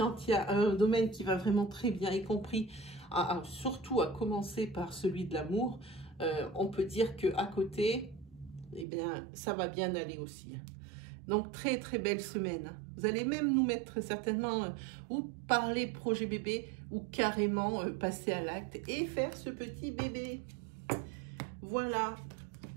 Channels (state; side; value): drops out; left; at 8.8 s